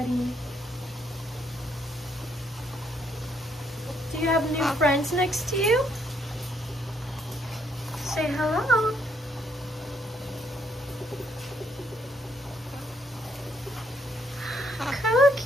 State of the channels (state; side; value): normal; both; correlation 0.72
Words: Do you have new friends next to you? Say hello.